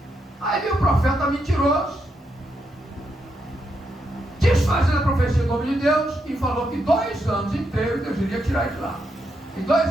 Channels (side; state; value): both; normal; correlation 0.81